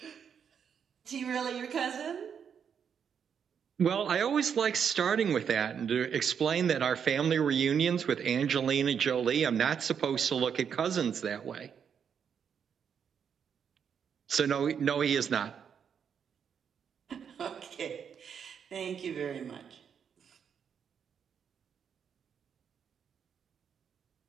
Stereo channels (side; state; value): left; quieter; 7.4 dB